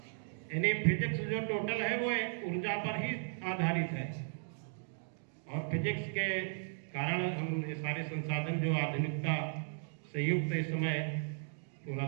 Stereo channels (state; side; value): silent; left; digital silence